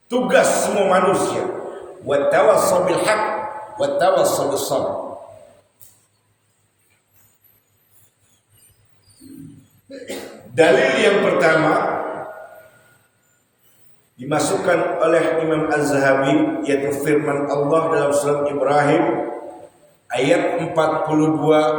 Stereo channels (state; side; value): identical; both; correlation 1.00